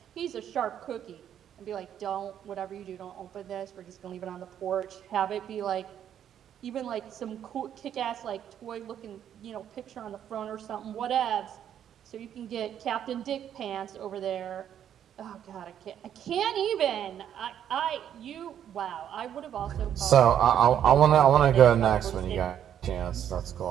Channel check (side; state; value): left; quieter; 9.8 dB